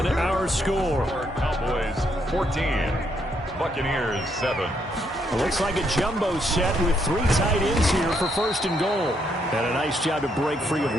our score. Cowboys 14, Buccaneers 7. It looks like a jumbo set with 3 tight ends here for first and goal. And a nice job to break free of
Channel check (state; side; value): normal; both; correlation 0.74